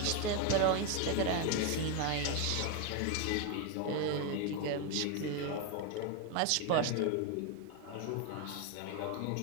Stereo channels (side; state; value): both; different; correlation 0.01